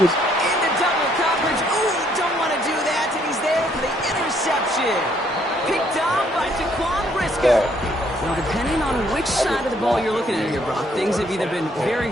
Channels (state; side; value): normal; both; correlation 0.67